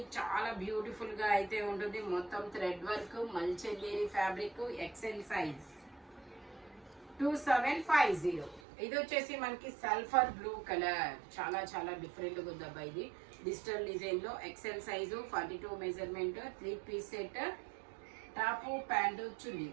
చాలా బ్యూటిఫుల్ గా అయితే ఉంటుంది. మొత్తం thread work, మల్చెందేరి fabric, XL size 2750. ఇది వచ్చేసి మనకి సల్ఫర్ బ్లూ కలర్, చాలా చాలా డిఫరెంట్ గా ఉందబ్బా. ఇది డిజిటల్ డిజైన్ లో XL size 42 measurement, 3 piece set, top pant chunni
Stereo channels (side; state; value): left; drops out; at 8.6 s